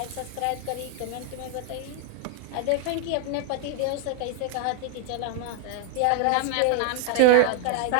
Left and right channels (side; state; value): both; different; correlation 0.00